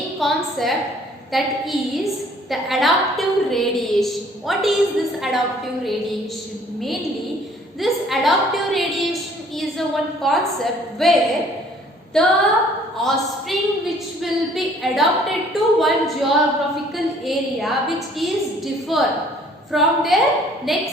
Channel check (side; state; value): both; normal; correlation 0.57